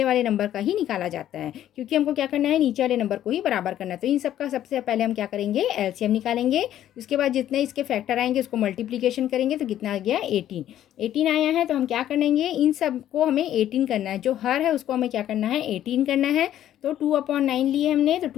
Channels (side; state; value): right; quieter; 11.8 dB